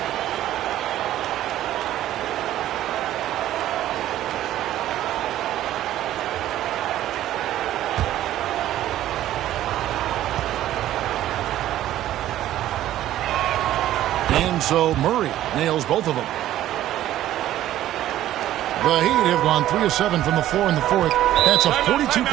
And so Murray nails both of them. The Heat have gone 3 of 7 from the floor in the fourth. That's a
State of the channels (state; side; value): quieter; left; 13.2 dB